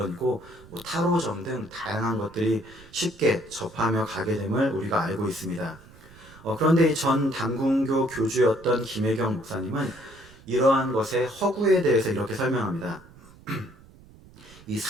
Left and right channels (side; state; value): right; noise; rumble, 23 dB below the sound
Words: 뭐 타로점 등 다양한 것들이 쉽게 접하며 가게 됨을 우리가 알고 있습니다. 그런데 이 전 단군교 교주였던 김혜경 목사님은 이러한 것의 허구에 대해서 이렇게 설명합니다. 이